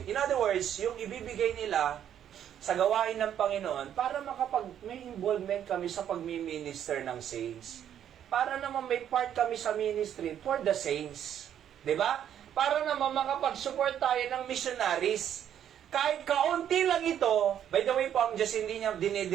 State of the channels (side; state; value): left; quieter; 9.9 dB